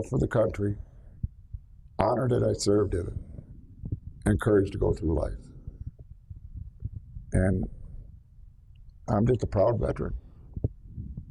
the country, honor that I served in it, and courage to go through life. And I'm just a proud veteran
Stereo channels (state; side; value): identical; both; correlation 1.00